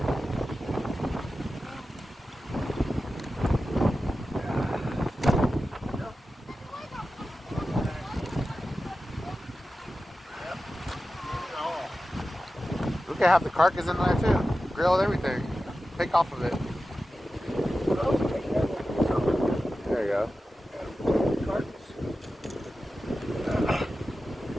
We could have the carcass in there too. Grilled everything. Take off of it. There you go.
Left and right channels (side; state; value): both; normal; correlation 0.93